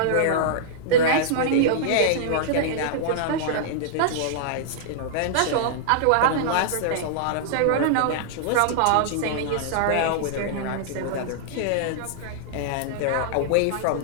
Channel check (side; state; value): both; different; correlation -0.01